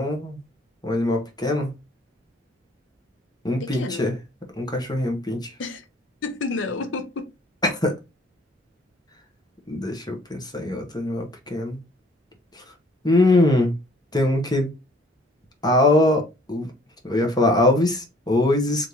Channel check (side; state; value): both; normal; correlation 0.57